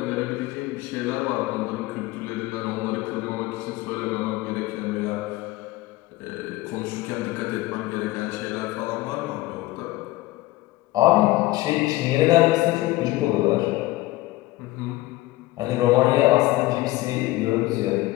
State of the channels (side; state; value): right; quieter; 18.5 dB